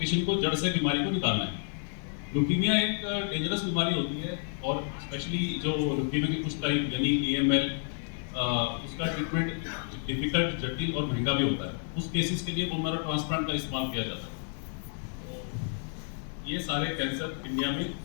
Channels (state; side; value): silent; right; 58 dB below the other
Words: को जड़ से बीमारी को निकालना है। ल्यूकीमिया एक डेंजरस बीमारी होती है, और स्पेशली जो ल्यूकीमिया की कुछ टाइप यानी AML, उसका ट्रीटमेंट डिफिकल्ट, जटिल और महंगा भी होता है। उस केसेस के लिए बोन मैरो ट्रांसप्लांट का इस्तेमाल किया जाता है। तो ये सारे कैंसर इंडिया में